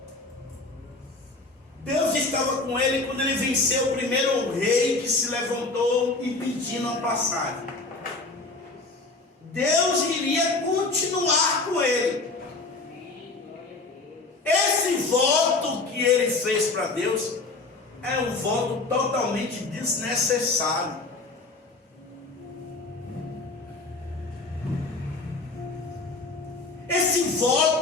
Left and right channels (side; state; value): right; quieter; 3.5 dB